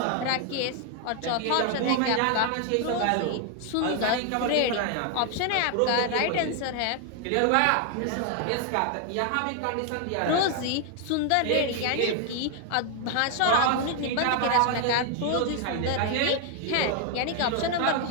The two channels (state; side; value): different; both; correlation 0.00